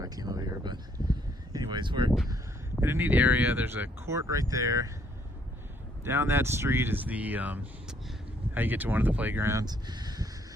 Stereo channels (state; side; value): normal; both; correlation 0.67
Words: I came over here, but anyways, we're in a neat area. There's a court right there. Down that street is the, how you get to one of the playgrounds.